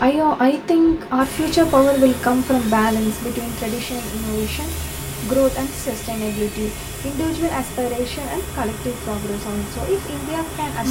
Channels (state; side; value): identical; both; correlation 1.00